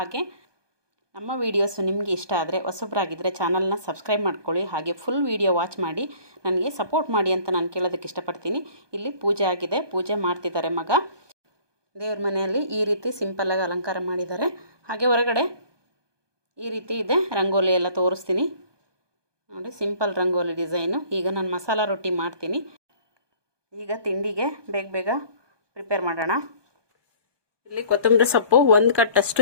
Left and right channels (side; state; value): left; late; 1.2 ms